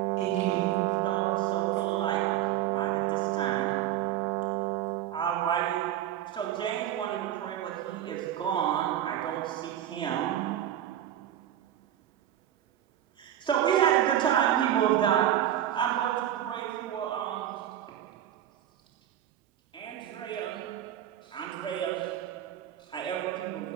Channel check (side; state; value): left; quieter; 11.6 dB